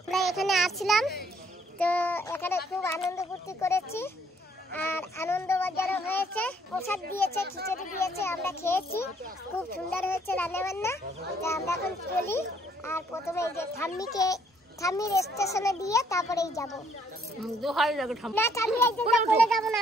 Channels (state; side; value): normal; both; correlation 0.66